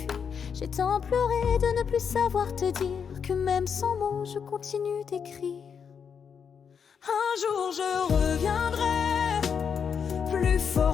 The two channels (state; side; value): quieter; right; 6.8 dB